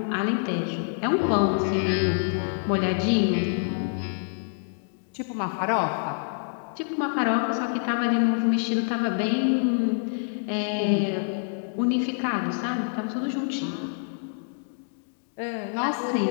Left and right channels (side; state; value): right; silent; digital silence